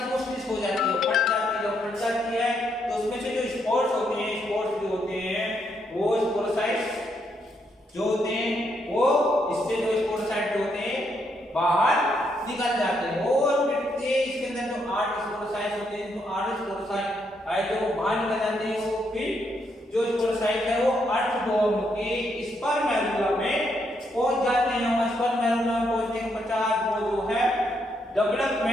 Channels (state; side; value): normal; both; correlation 0.76